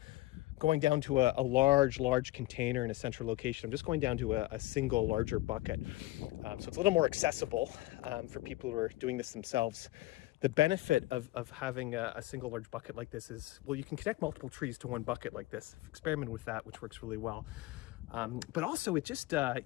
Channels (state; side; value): quieter; right; 18.2 dB